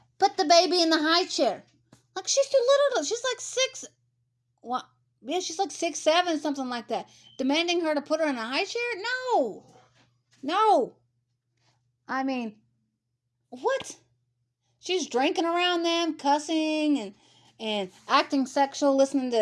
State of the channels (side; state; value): both; identical; correlation 1.00